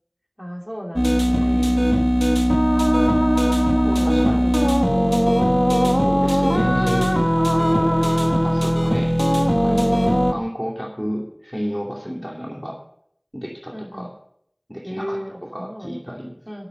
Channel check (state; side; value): identical; both; correlation 1.00